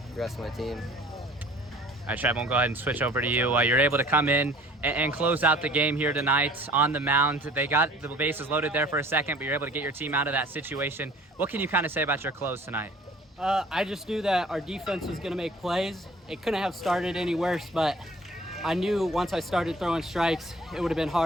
rest of my team. All right, Trev, we'll go ahead and switch over to you. You're able to come in and close out the game here tonight on the mound. They got the bases loaded there for a second, but you're able to get your team out of that situation. What can you kind of say about your close tonight? I just knew that our defense was going to make plays. It couldn't have started any worse, but I knew once I started throwing strikes, it would have been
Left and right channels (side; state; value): both; normal; correlation 0.50